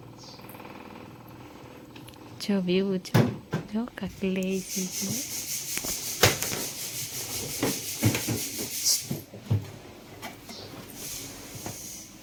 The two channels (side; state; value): both; identical; correlation 1.00